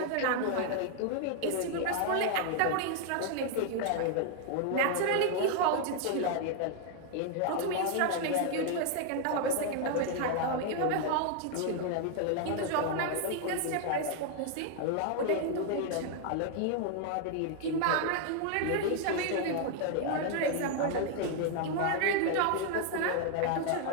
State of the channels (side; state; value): both; different; correlation 0.00